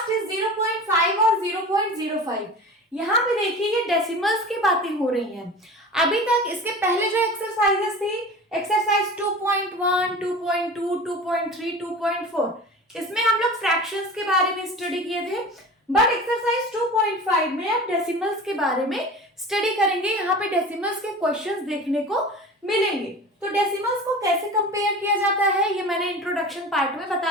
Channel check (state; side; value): normal; both; correlation 0.35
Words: इज 0.5 और 0.05। यहाँ पे देखिए ये डेसिमल्स की बातें हो रही हैं। अभी तक इसके पहले जो एक्सरसाइजेस थी, एक्सरसाइज 2.1, 2.2, 2.3, 2.4, इसमें हम लोग फ्रैक्शंस के बारे में स्टडी किए थे। बट एक्सरसाइज 2.5 में अब डेसिमल्स के बारे में स्टडी करेंगे। यहाँ पे डेसिमल्स के क्वेश्चंस देखने को मिलेंगे। तो डेसिमल्स को कैसे कंपेयर किया जाता है ये मैंने इंट्रोडक्शन पार्ट में